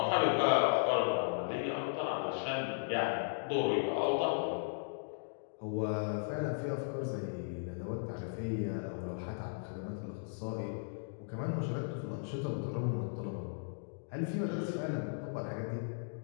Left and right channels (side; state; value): right; silent; digital silence